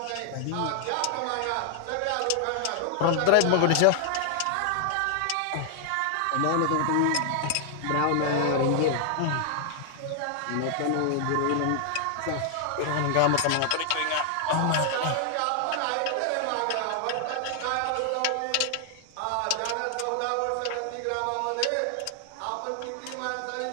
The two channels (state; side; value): different; both; correlation 0.00